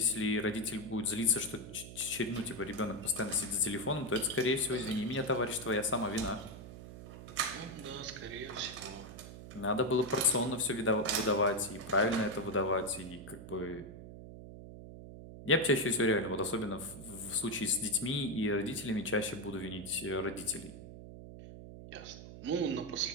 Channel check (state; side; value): noise; right; hum, 13 dB below the sound